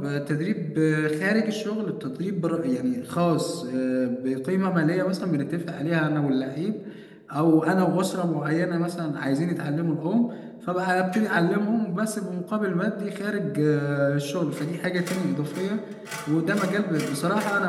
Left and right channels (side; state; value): both; identical; correlation 1.00